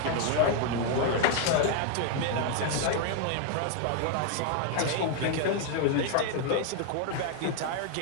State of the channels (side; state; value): both; different; correlation 0.00